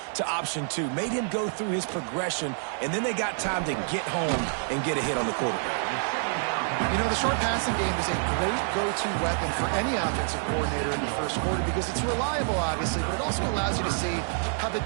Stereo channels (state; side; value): silent; left; 60 dB below the other